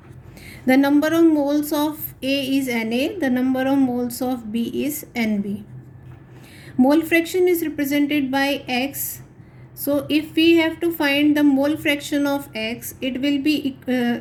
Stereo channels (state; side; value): identical; both; correlation 1.00